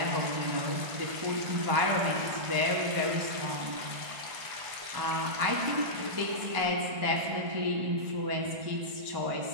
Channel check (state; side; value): late; left; 1.5 ms